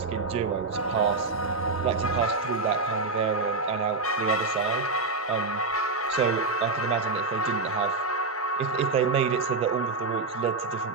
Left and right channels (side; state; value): left; quieter; 3.8 dB